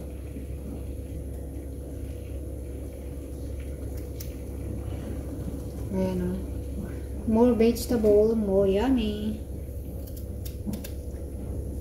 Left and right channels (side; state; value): both; identical; correlation 1.00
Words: Ayan, o. More vegetable, more yummy.